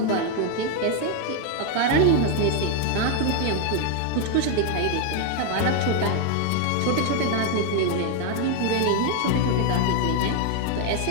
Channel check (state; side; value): different; both; correlation 0.01